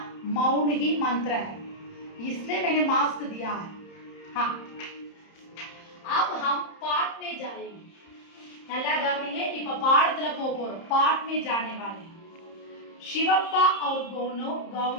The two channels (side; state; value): right; late; 30 ms